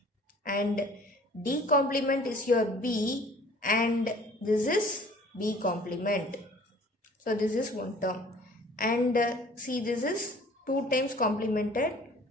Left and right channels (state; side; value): normal; both; correlation 0.51